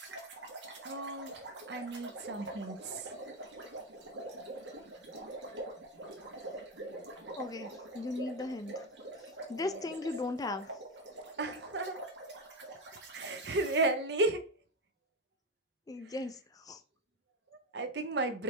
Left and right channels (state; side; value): normal; both; correlation 0.11